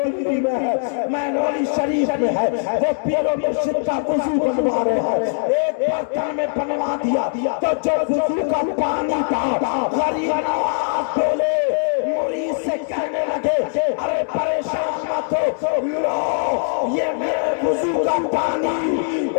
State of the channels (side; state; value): right; silent; 64 dB below the other